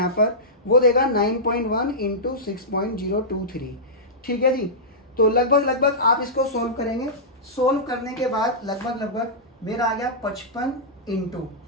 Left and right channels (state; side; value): normal; both; correlation -0.15